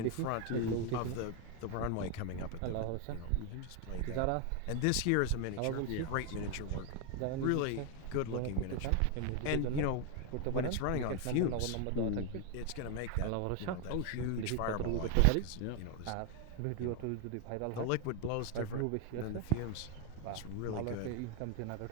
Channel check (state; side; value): different; both; correlation 0.01